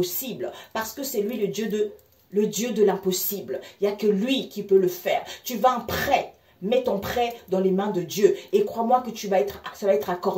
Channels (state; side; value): identical; both; correlation 1.00